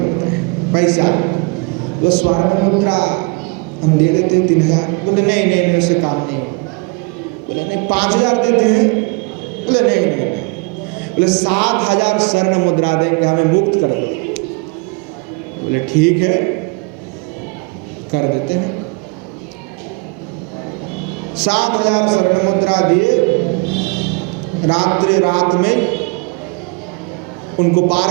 हैं पैसा। तो स्वर्ण मुद्रा हम दे देते हैं 3000। बोले नहीं नहीं नहीं, उससे काम नहीं होगा। बोले नहीं 5000 देते हैं। बोले नहीं नहीं नहीं। बोले 7000 स्वर्ण मुद्रा देंगे, हमें मुक्त कर दो। बोले ठीक है कर देते हैं। 7000 स्वर्ण मुद्रा दिए। रात में उनको पार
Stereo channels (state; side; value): quieter; left; 30.2 dB